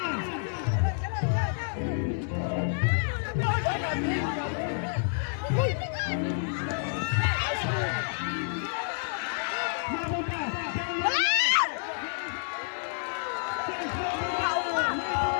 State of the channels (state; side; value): silent; right; digital silence